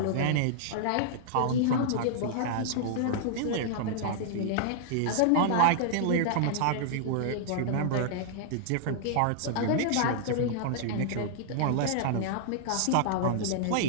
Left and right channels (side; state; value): both; different; correlation -0.01